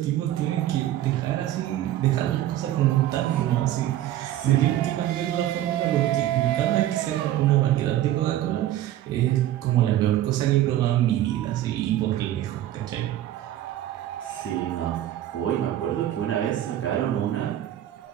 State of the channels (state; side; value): quieter; left; 13.0 dB